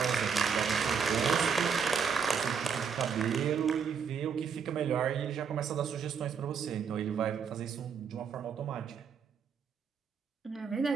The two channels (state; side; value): quieter; left; 6.5 dB